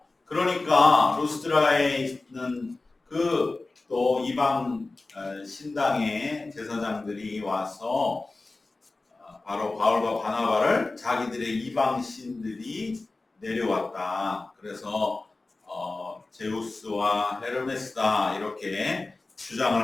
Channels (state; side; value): quieter; right; 3.3 dB